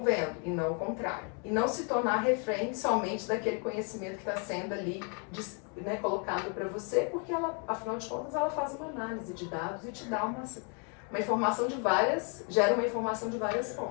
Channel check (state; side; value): quieter; right; 38.3 dB